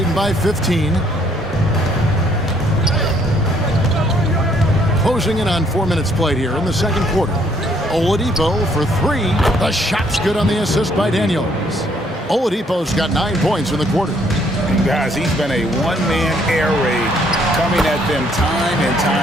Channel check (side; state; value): both; normal; correlation 0.66